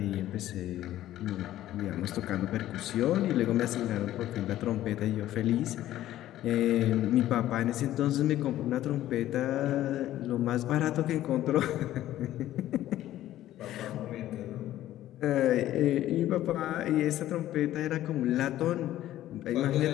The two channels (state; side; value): quieter; right; 13.6 dB